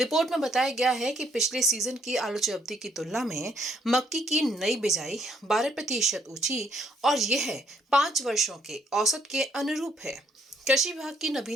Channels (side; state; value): both; normal; correlation 0.69